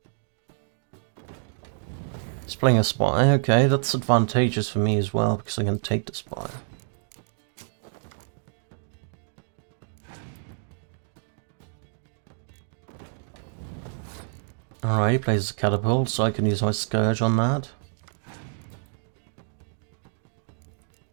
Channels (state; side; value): silent; left; digital silence